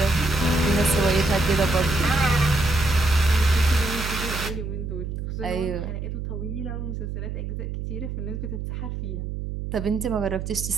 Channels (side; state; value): right; noise; hum, 5 dB below the sound